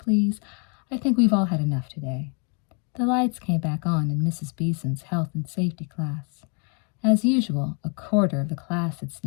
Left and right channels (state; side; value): quieter; right; 37.4 dB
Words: I think we've all had enough today." The lights came back on in Mrs. Beeson's health and safety class. As usual, a quarter of the class had